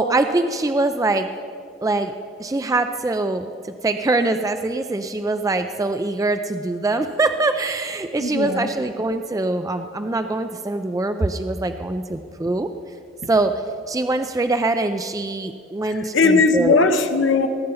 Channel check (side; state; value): both; normal; correlation 0.49